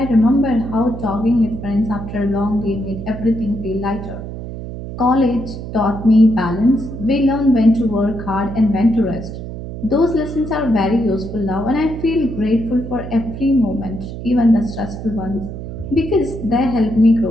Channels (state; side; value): noise; right; hum, 9 dB below the sound